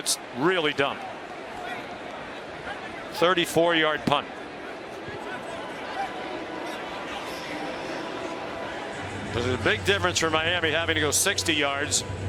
really dumb. 34-yard punt. There's a big difference for Miami having to go 60 yards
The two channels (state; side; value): identical; both; correlation 1.00